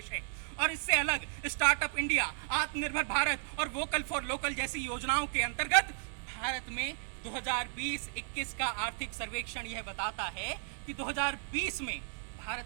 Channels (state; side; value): silent; left; 55 dB below the other